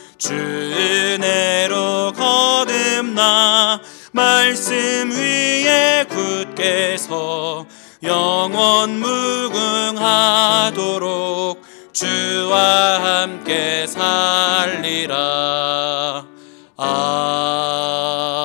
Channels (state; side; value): quieter; right; 39.7 dB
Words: 주 은혜로 거듭나 말씀 위에 굳게 서 영원 무궁하도록 주와 함께 살리라. 아멘.